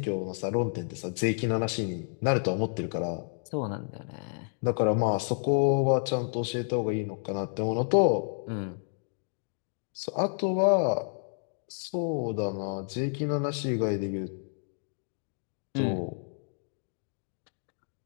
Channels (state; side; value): silent; right; digital silence